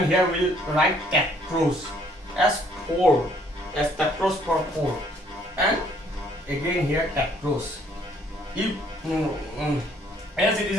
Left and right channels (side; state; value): both; normal; correlation 0.63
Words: here we'll write tetrose as 4, as tetrose for 4, and again here tetrose. If as it is